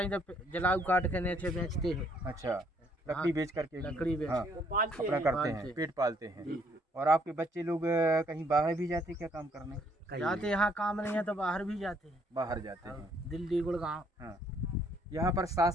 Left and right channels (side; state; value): both; normal; correlation 0.67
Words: ही, जब जलाऊ काट के नीचे बेचते हैं। अच्छा, लकड़ी बेच करके? लकड़ी बेच हाँ, अपना करते हैं, पेट पालते हैं। और आपके बच्चे लोग कहीं बाहर भी जाते हैं क्या काम करने? जाते, यहाँ काम नहीं है तो बाहर भी जाते हैं। बाहर जाते हैं, दिल्ली, गुड़गांव। हाँ। यहाँ पर